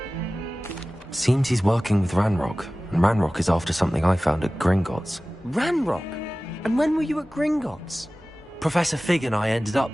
Seems he's working with Ranrock, and Ranrock is after something I found at Gringotts. Ranrock? And when were you at Gringotts? Professor Fig and I ended up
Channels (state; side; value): normal; both; correlation 0.97